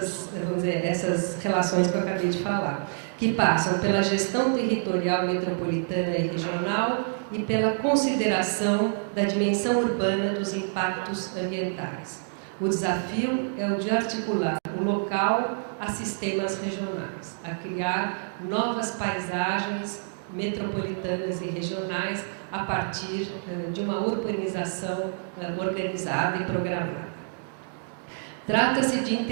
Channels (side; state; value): left; silent; digital silence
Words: relações que eu acabei de falar, que passam pela gestão territorial metropolitana e regional e pela consideração da dimensão urbana dos impactos ambientais. O desafio é o de articular o local a sistemas regionais, a criar novas paisagens metropolitanas e regionais a partir de uma urbanização organizada e programada. Trata-se de